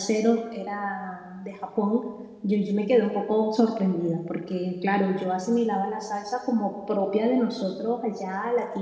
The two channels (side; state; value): both; identical; correlation 1.00